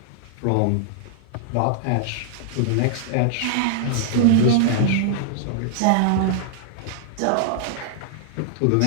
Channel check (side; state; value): both; different; correlation -0.01